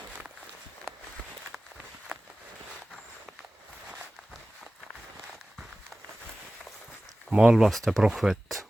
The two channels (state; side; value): normal; both; correlation 0.97